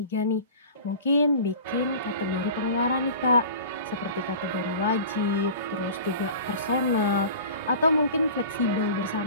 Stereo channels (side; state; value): both; inverted; correlation -0.39